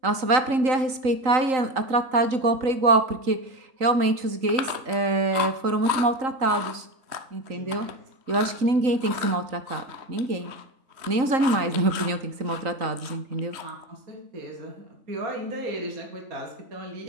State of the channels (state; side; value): late; left; 3.8 ms